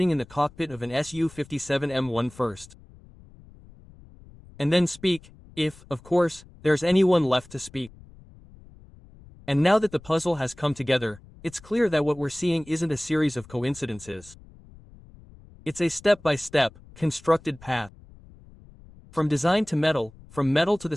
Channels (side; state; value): left; noise; rumble, 23 dB below the sound